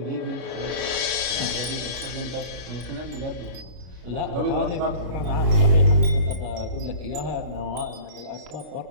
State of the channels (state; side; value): late; left; 33 ms